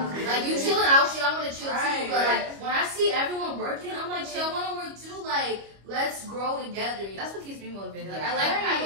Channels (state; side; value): late; left; 25 ms